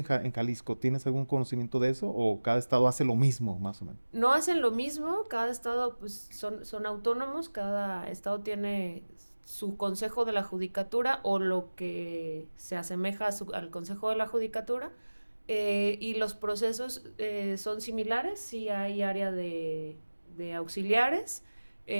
Jalisco? ¿Tienes algún conocimiento de eso o cada estado hace lo mismo, más o menos? No hacen lo mismo, cada estado pues son autónomos, cada estado tiene su consejo de la judicatura o lo que se asemeja al consejo de la judicatura, y los procesos son similares. Sí hay área de auxiliares,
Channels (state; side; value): inverted; both; correlation -1.00